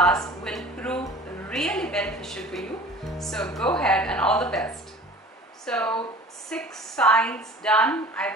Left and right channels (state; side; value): normal; both; correlation 0.43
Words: will prove really beneficial for you. So go ahead, and all the best. So 6 signs done. I